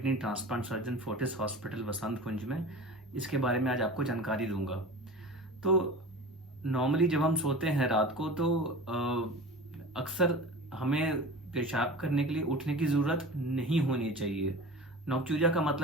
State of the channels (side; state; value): both; normal; correlation 0.35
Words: transplant surgeon, Fortis hospital, Vasant Kunj में इसके बारे में आज आपको जानकारी दूंगा। तो नॉर्मली जब हम सोते हैं रात को, तो अक्सर हमें पेशाब करने के लिए उठने की ज़रूरत नहीं होनी चाहिए। नौक्चूरिया का